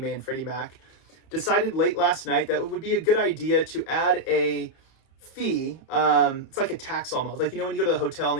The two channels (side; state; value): right; late; 30 ms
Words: and Freddie Mac, decided late last night that it would be a good idea to add a fee. It's like a tax almost. Like, when you go to the hotel and